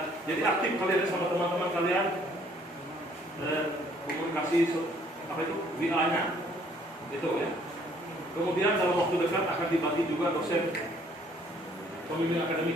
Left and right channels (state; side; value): normal; both; correlation 0.62